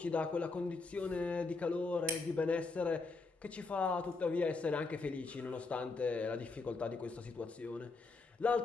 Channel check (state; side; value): quieter; right; 3.8 dB